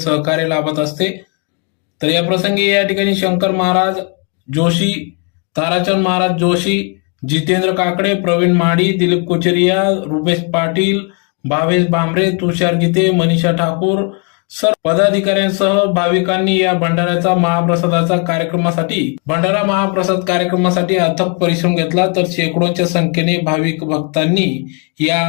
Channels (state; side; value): quieter; right; 35.3 dB